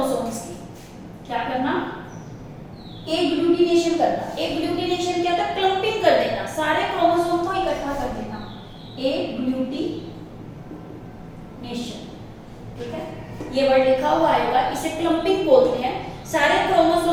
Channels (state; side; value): identical; both; correlation 1.00